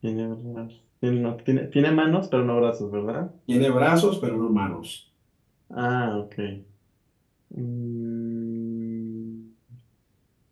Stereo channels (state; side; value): identical; both; correlation 1.00